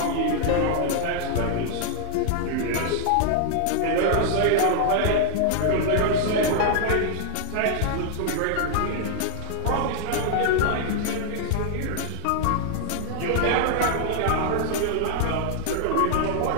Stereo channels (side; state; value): both; different; correlation 0.00